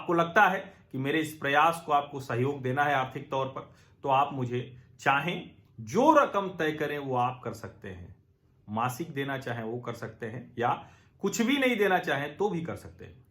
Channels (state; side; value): identical; both; correlation 1.00